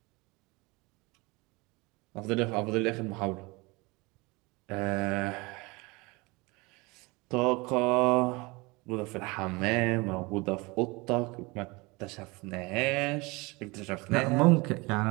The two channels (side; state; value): left; quieter; 25.0 dB